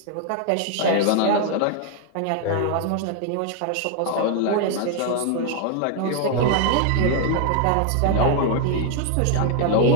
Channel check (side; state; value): both; different; correlation 0.00